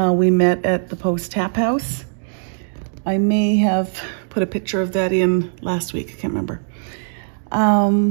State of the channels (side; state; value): left; silent; digital silence